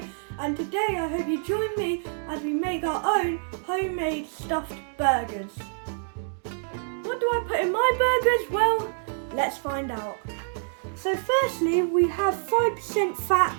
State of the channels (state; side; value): silent; left; 60 dB below the other